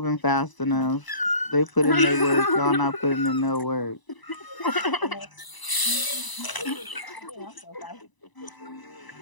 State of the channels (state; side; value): late; right; 1.0 ms